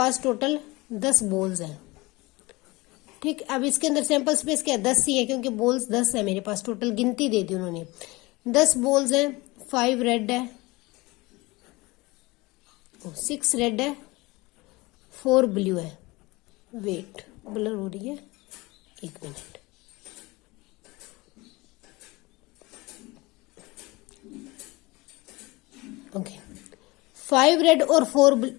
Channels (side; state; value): right; quieter; 22.7 dB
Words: टोटल 10 बॉल्स हैं। ठीक, अब इसके अंदर सैंपल स्पेस क्या 10 ही है, क्योंकि बॉल्स 10 है मेरे पास, टोटल गिनती दे दी उन्होंने। 10 बॉल्स हैं, 5 रेड है, 6 रेड है, 4 ब्लू है। वेट, ब्लर हो रही है, 1 मिनट। ओके, 5 रेड और